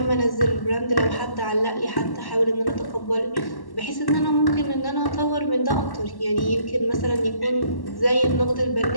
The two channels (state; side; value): late; right; 1.1 ms